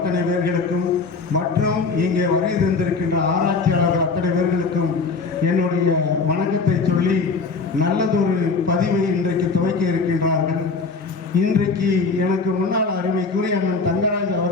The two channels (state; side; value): quieter; right; 4.5 dB